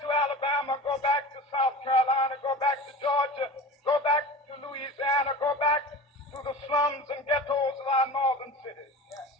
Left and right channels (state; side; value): normal; both; correlation 0.34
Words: to Alabama. Go back to South Carolina. Go back to Georgia. Go back to Louisiana. Go back to the slums and ghettos of our northern cities.